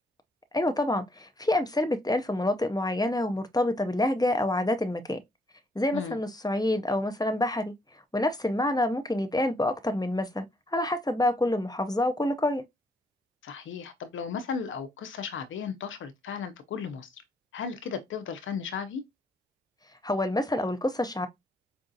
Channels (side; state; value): both; normal; correlation 0.70